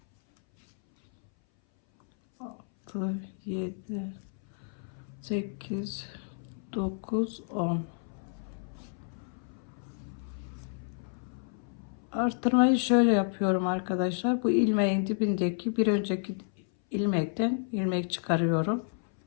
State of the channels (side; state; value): right; silent; 57 dB below the other